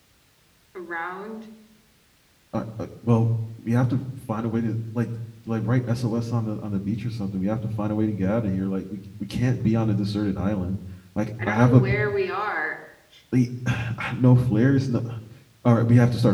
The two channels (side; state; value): both; identical; correlation 1.00